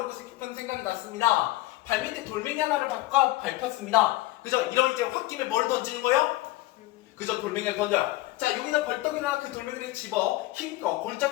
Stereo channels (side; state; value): right; quieter; 18.3 dB